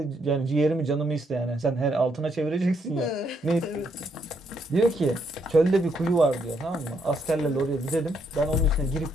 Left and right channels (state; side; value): normal; both; correlation 0.74